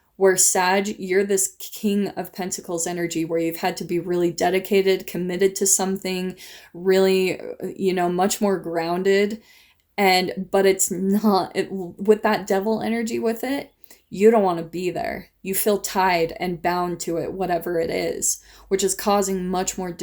Where Sag, you're this King of Pentacles energy where you've had to be really dedicated, committed to something, really, much more grounded. But it's not with that devil energy with it. You don't want to be there. You feel tied and bound to it, whatever it is, which is causing much more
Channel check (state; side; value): identical; both; correlation 1.00